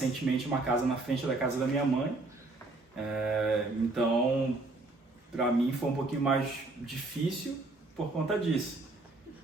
uma casa na frente da casa da minha mãe, então para mim foi um pouquinho mais difícil por conta disso.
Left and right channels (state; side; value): quieter; left; 3.1 dB